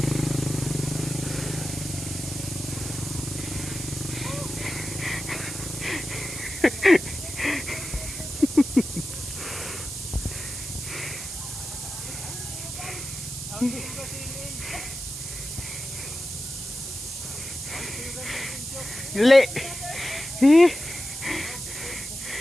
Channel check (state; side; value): noise; right; hiss, 8 dB below the sound